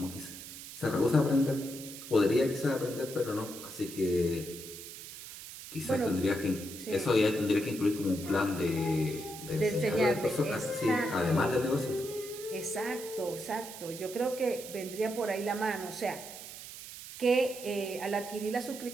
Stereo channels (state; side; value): noise; right; hiss, 12 dB below the sound